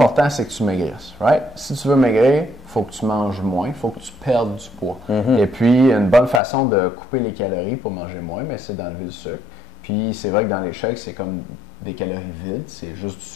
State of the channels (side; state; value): right; drops out; at 6.4 s